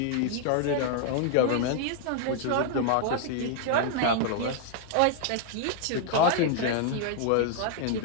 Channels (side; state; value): both; different; correlation -0.01